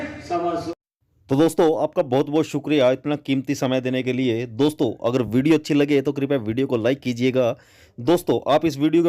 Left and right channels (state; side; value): identical; both; correlation 1.00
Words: 125। तो दोस्तों आपका बहुत बहुत शुक्रिया इतना कीमती समय देने के लिए। दोस्तों अगर वीडियो अच्छी लगे तो कृपया वीडियो को लाइक कीजिएगा। दोस्तों आप इस वीडियो